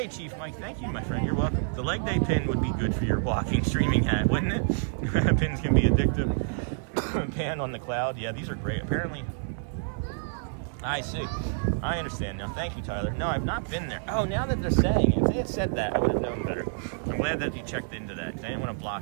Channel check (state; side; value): silent; left; digital silence